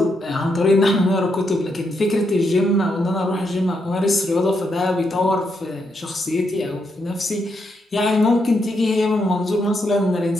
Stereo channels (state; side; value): normal; both; correlation 0.80